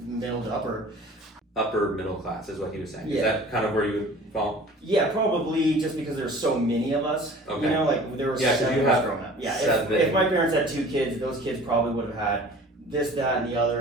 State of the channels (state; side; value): normal; both; correlation 0.45